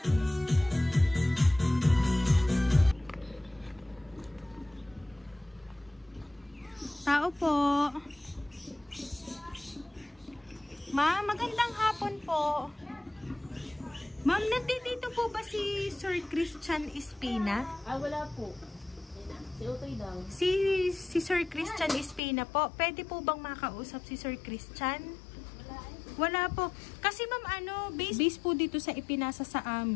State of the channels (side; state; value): right; drops out; at 22.2 s